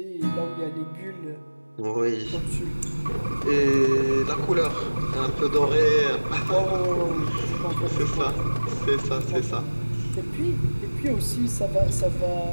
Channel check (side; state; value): both; inverted; correlation -1.00